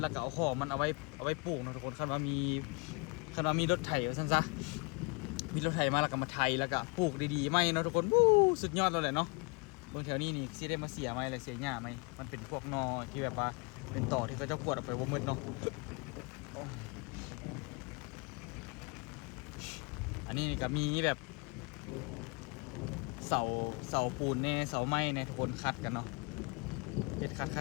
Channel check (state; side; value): quieter; right; 30.2 dB